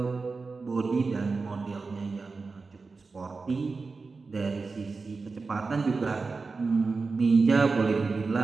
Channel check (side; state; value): left; quieter; 4.2 dB